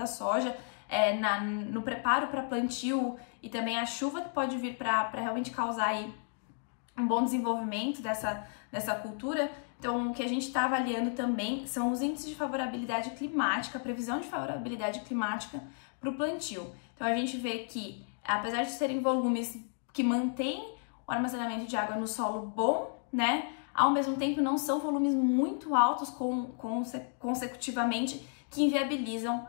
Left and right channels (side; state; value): right; silent; 56 dB below the other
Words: soja, no preparo para plantio e também a chuva que pode vir para realmente causar aí um bom desenvolvimento dessa cultura. Então, o que a gente está avaliando também são os índices de favorabilidade climática, a previsão de favorabilidade climática para o plantio. Então, a gente vê que, apesar de serem volumes que mantêm o armazenamento de água no solo bom, né, ao mesmo tempo não são volumes muito altos consecutivamente que inviabilizam